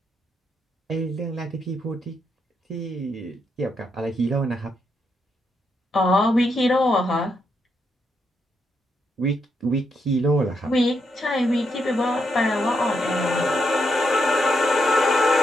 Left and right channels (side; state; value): both; normal; correlation 0.80